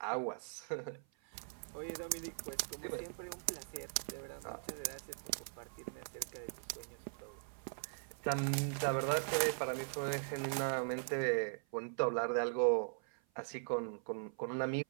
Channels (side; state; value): left; silent; 51 dB below the other